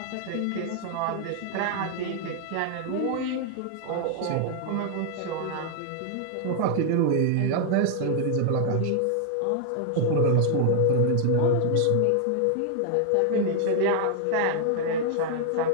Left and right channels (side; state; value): both; different; correlation 0.00